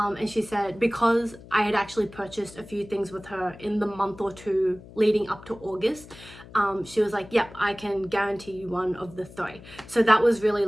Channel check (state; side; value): noise; left; hum, 19 dB below the sound